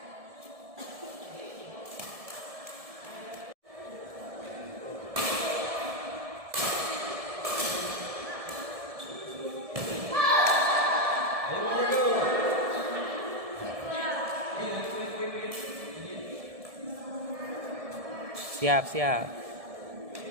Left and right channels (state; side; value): late; left; 1.7 ms